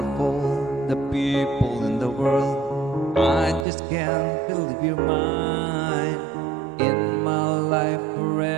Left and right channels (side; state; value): left; drops out; at 3.7 s